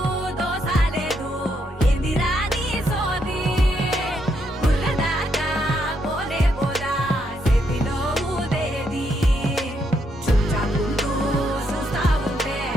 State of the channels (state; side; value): normal; both; correlation 0.77